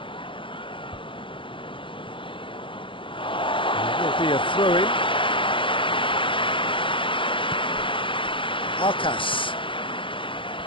Be a throw-in. Arcas.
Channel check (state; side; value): late; right; 0.25 ms